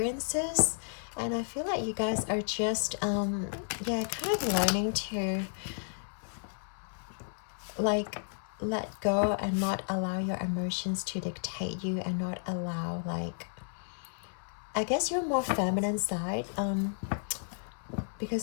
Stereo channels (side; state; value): right; silent; 55 dB below the other